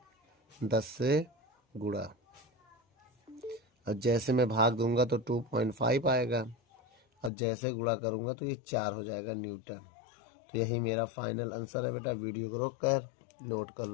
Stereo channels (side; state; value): right; drops out; at 7.3 s